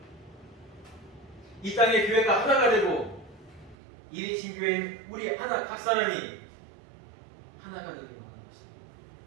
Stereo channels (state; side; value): drops out; left; at 3.8 s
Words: 이 땅의 교회가 하나가 되고 이리신 교회는 우리 하나 각 사람이 하나가 되기를 원하는 것입니다.